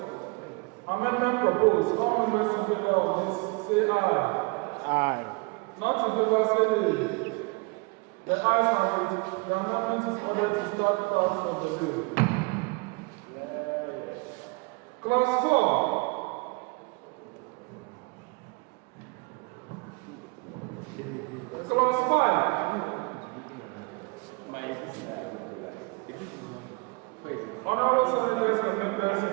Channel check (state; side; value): quieter; left; 29.1 dB